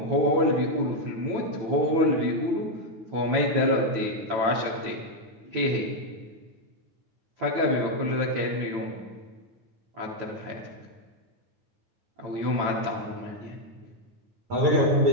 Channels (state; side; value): late; left; 8.9 ms